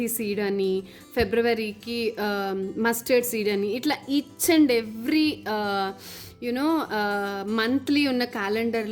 సీడ్ అని, ఫిబ్రవరికి మస్టర్డ్ సీడ్ అని, ఇట్లా each and every you know monthly ఉన్న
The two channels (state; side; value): identical; both; correlation 1.00